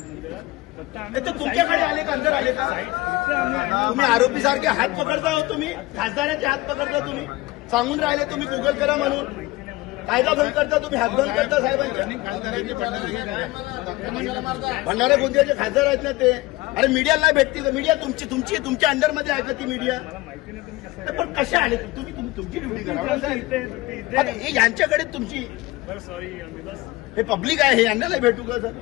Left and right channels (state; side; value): quieter; right; 20.0 dB